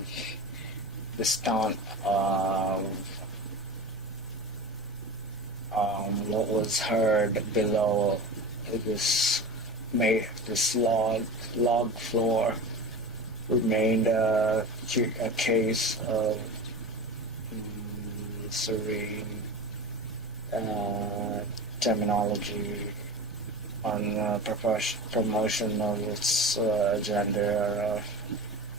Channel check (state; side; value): noise; right; hum, 22 dB below the sound